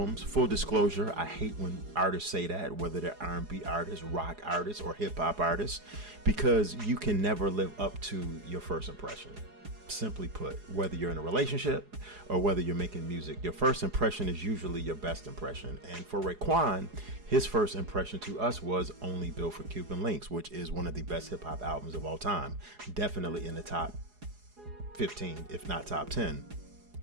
Full disclosure, I hate when artists say that, whether they're R&B artists, rock artists, or hip hop artists, because you can never live up to your first impression. Simply put, whether you're in a relationship or whether you're making music, your first impression is usually your best impression. And for Raekwon, his first impression to us was Only Built for Cuban Links, which is one of the best hip hop albums of all time. Definitely in the top 15, if not top 10.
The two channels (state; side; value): late; left; 4.8 ms